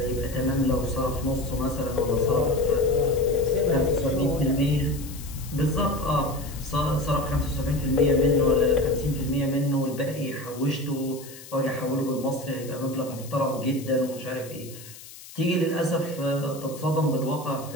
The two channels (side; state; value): left; noise; hiss, 17 dB below the sound